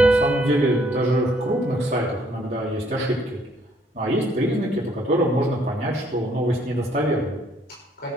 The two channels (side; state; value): both; normal; correlation 0.66